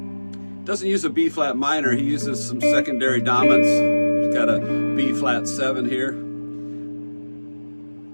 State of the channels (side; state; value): both; inverted; correlation -1.00